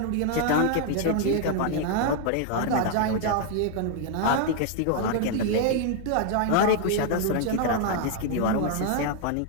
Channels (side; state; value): both; different; correlation 0.00